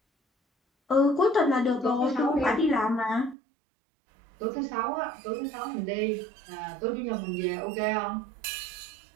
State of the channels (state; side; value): drops out; left; at 3.4 s